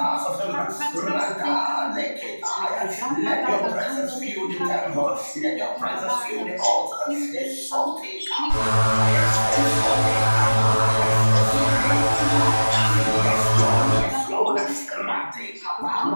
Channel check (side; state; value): both; inverted; correlation -1.00